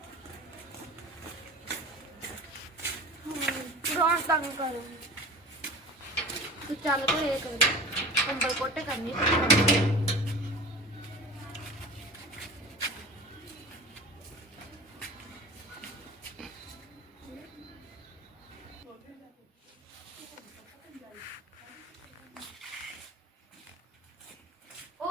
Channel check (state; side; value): normal; both; correlation 0.36